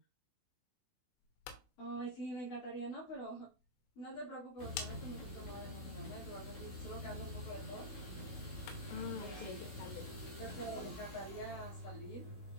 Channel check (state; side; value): late; right; 16 ms